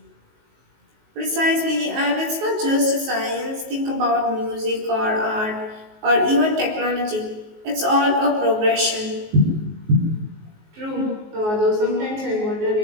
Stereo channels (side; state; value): left; late; 19 ms